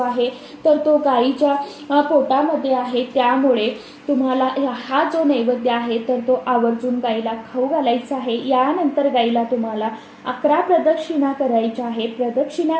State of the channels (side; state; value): both; identical; correlation 1.00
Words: तर तो गायीच्या पोटामध्ये आहे। त्यामुळे तुम्हाला हा जो नैवेद्य आहे तर तो आवर्जून गायीला खाऊ घालायचा आहे। यानंतर गायीला तुम्हाला 11 प्रदक्षिणा करायच्या आहे।